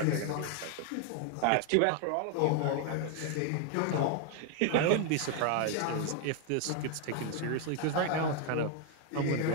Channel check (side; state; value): both; different; correlation 0.01